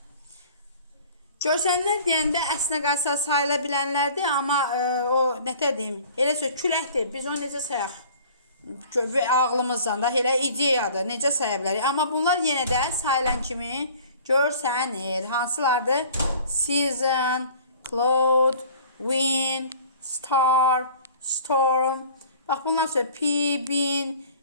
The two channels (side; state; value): both; inverted; correlation -0.48